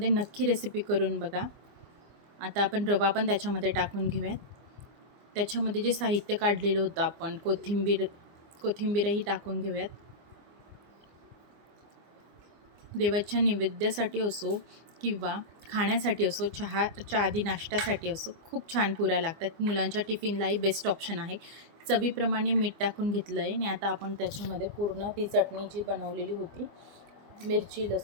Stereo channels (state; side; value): late; left; 24 ms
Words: नक्की रेसिपी करून बघा. आता आपण रवा पण त्याच्यामध्ये टाकून घेऊयात. त्याच्यामध्ये जे साहित्य काढलेलं होतं आपण, कोथिंबीरही टाकून घेऊयात. देवाच्या नैवेद्यासाठी असो किंवा खाण्यासाठी असो, चहाच्या आधी नाश्त्यासाठी असो, खूप छान पुऱ्या लागतात. मुलांच्या टिफिनलाही बेस्ट ऑप्शन आहे. चवीप्रमाणे मीठ टाकून घेतलं आहे आणि आता आपण त्याच्यामध्ये पूर्ण ती चटणी जी बनवलेली होती, मिरची,